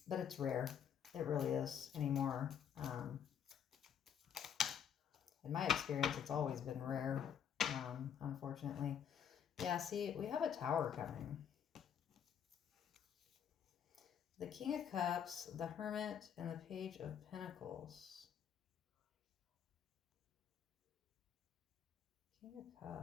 it's rare. It really is anymore. In my experience, it's always been rare, unfortunately. Yeah, see, we have a Tower coming. The King of Cups, the Hermit, and the Page of Pentacles. King of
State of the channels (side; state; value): right; quieter; 8.5 dB